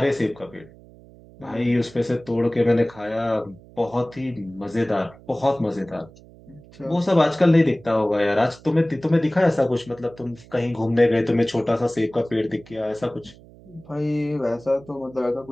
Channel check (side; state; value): right; noise; hum, 23 dB below the sound